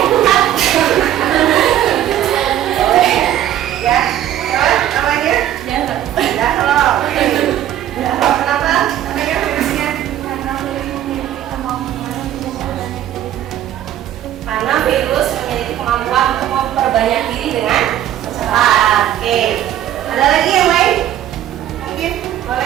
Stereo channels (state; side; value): quieter; left; 11.9 dB